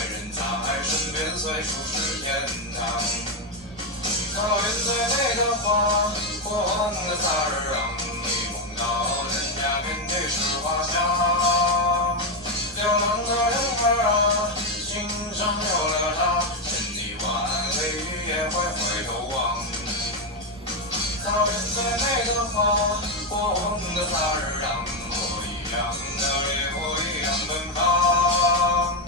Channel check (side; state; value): both; normal; correlation 0.06